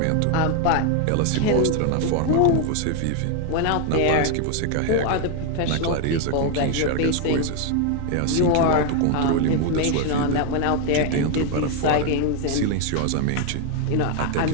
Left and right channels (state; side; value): different; both; correlation 0.01